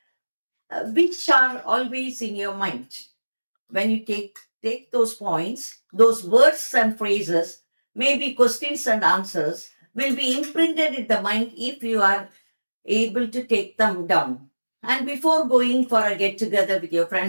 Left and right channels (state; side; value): inverted; both; correlation -1.00